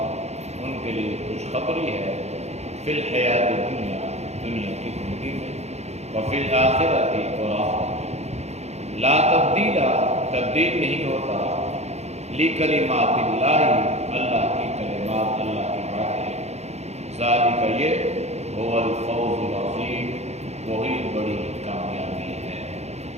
ان کے لیے خوشخبری ہے، فی الحیات دنیا دنیا کی زندگی میں، وفی الآخرۃ اور آخرت میں، لا تبدیل تبدیل نہیں ہوتا، لکلمات اللہ اللہ کی کلمات اللہ کی باتیں، ذالک یہ هو الفوز العظیم وہی بڑی کامیابی ہے۔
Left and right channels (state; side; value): late; left; 0.32 ms